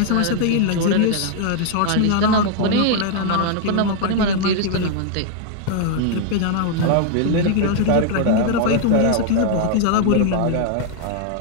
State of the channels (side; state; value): both; different; correlation -0.01